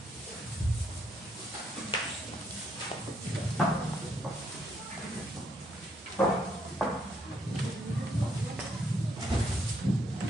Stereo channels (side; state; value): both; normal; correlation 0.73